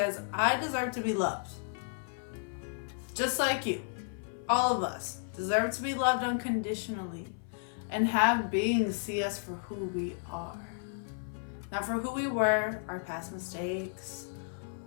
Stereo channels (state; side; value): silent; right; 56 dB below the other